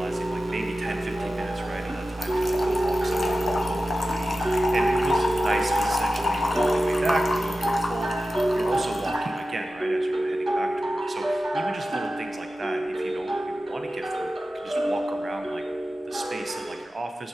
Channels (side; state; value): both; normal; correlation 0.94